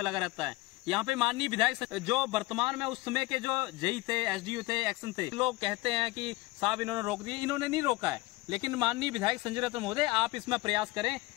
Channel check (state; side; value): quieter; right; 20.8 dB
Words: लगा रहता है? यहाँ पे माननीय विधायक जो वर्तमान में उस समय के जो जेई थे, एसडीओ थे, एक्शन थे, लोग कहते हैं कि साहब इन्होंने रोक दिए। इन्होंने नहीं रोका है, लेकिन माननीय विधायक संजय रतन महोदय, आप इसमें प्रयास करें